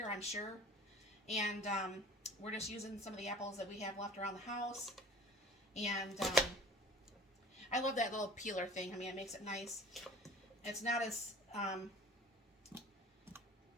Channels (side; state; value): both; normal; correlation 0.44